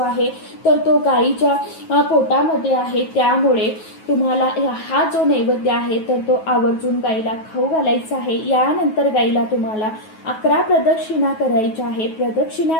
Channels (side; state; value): right; late; 9.3 ms